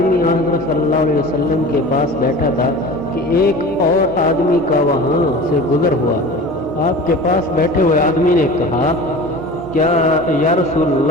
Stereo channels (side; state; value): both; normal; correlation 0.37